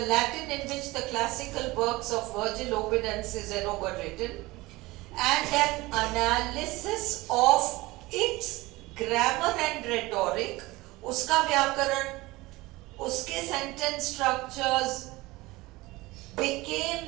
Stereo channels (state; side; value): quieter; left; 20.7 dB